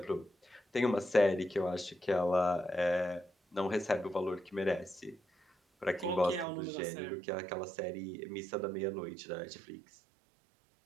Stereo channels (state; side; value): drops out; left; at 6.5 s